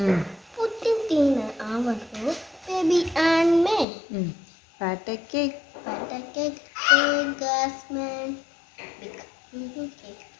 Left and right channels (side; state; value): right; drops out; at 3.9 s